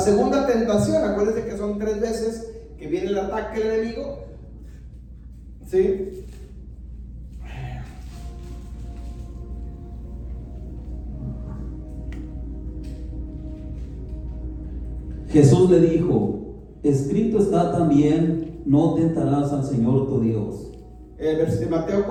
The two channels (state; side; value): identical; both; correlation 1.00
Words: tentación, acuérdense que son 3 veces que viene el ataque del enemigo. ¿Sí? Jesús le dijo: escrito está también, no tentarás al Señor tu Dios. Mateo